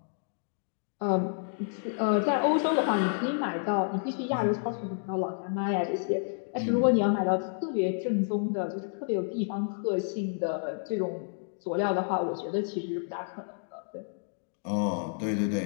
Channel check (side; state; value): right; silent; digital silence